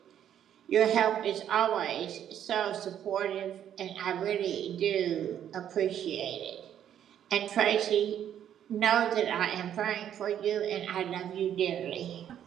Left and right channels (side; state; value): left; quieter; 10.0 dB